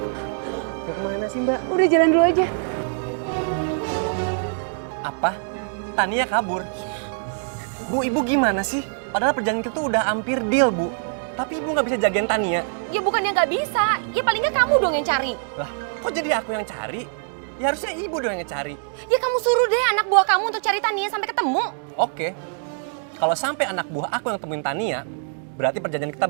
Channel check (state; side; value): silent; left; digital silence